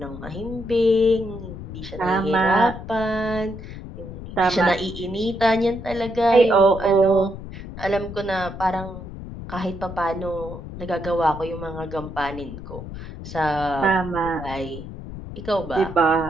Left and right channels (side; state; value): left; noise; rumble, 11 dB below the sound